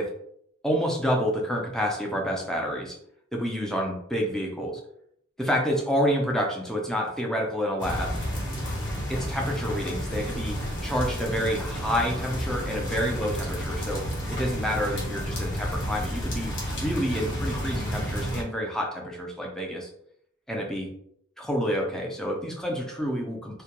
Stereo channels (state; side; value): normal; both; correlation 0.63